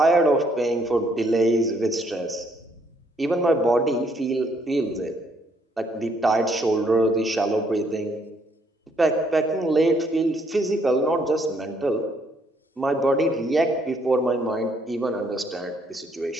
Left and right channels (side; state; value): both; normal; correlation 0.69